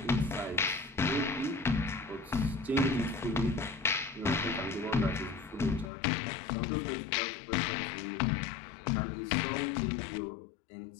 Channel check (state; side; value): drops out; right; at 5.9 s